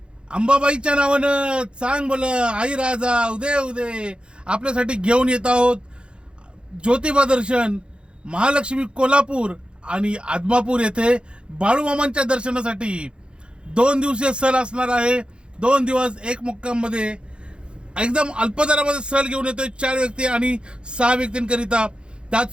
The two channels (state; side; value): late; left; 0.054 ms